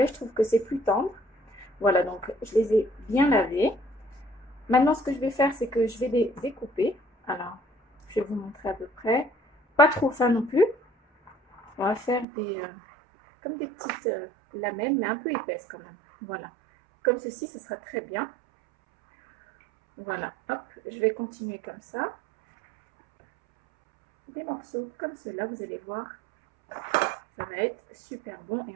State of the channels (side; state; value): left; drops out; at 12.2 s